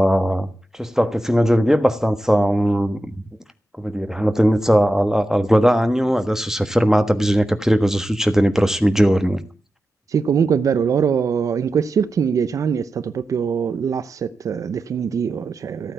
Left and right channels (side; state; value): both; normal; correlation 0.91